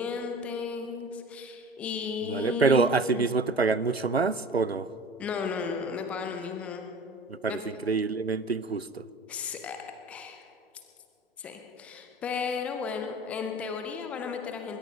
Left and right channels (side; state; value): both; normal; correlation 0.40